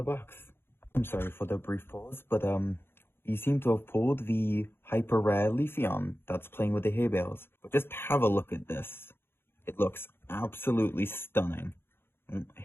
the box. I'm sorry for the brief pause, but you seem to have pulled the hyper rare Leafeon that's playing with the hay bales. But just have a look at this. It looks absolutely stunning. I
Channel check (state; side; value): late; right; 0.11 ms